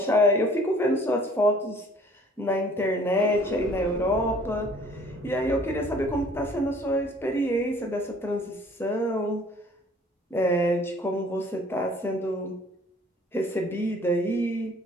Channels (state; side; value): normal; both; correlation 0.54